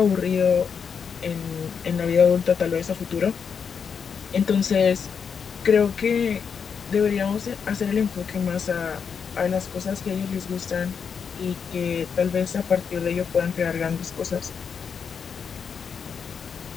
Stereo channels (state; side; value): quieter; right; 6.5 dB